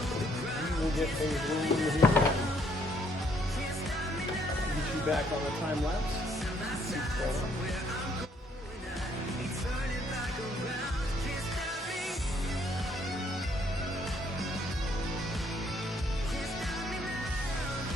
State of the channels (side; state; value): both; normal; correlation 0.67